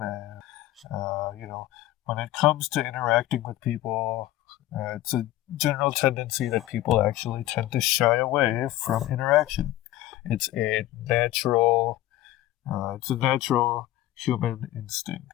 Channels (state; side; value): quieter; right; 15.1 dB